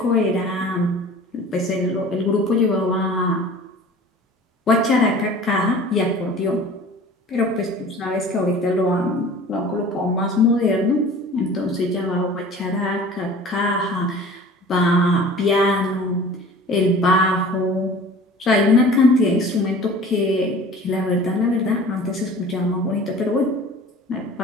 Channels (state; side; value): normal; both; correlation 0.44